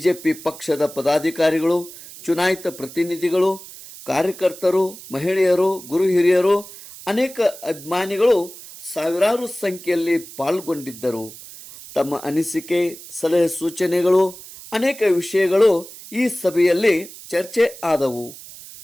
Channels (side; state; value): right; noise; hiss, 16 dB below the sound